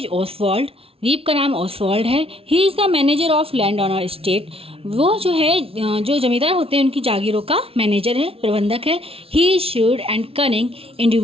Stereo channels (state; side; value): late; left; 0.27 ms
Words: Oswald. रीव का नाम Oswald है. He is the manager of land on state. वो जो है जो जमींदार होते हैं उनकी जागीरों का मैनेजर है, प्रबंधक है. He is shrewd and cunning